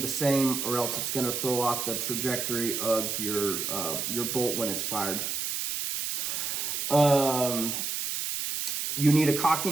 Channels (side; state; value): right; noise; hiss, 2 dB below the sound